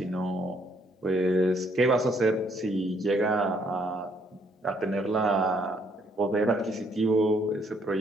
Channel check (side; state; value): both; normal; correlation 0.68